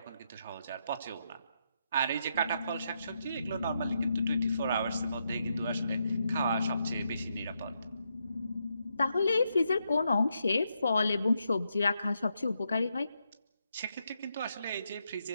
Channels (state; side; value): inverted; both; correlation -0.81